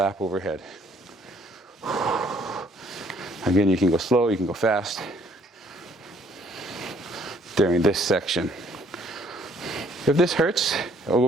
overhead. Again, you can go slow, you can go fast during this section. If this hurts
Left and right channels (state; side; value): normal; both; correlation 0.62